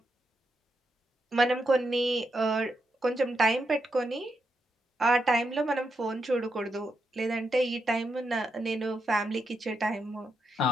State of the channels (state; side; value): normal; both; correlation 0.83